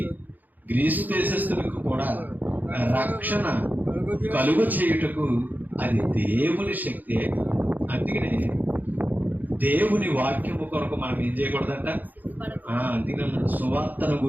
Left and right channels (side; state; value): left; late; 0.084 ms